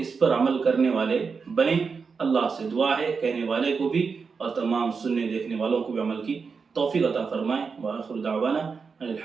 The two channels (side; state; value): left; quieter; 5.3 dB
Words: پر عمل کرنے والے بنیں۔ اللہ سے دعا ہے کہنے والے کو بھی اور تمام سننے دیکھنے والوں کو بھی عمل کی توفیق عطا فرمائیں۔ وآخر دعوانا